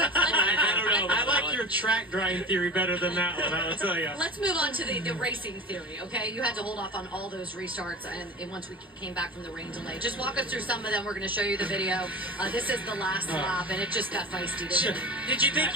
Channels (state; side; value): normal; both; correlation 0.32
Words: don't know. I like your track drying theory better than that one. I will tell you. Let's move on to the racing theory, okay? You had to hold off on all those restarts and once we came back from the rain delay. Just walk us through some of them. We're going to show you the video. This is the last lap, and it just got feisty, didn't it? Did you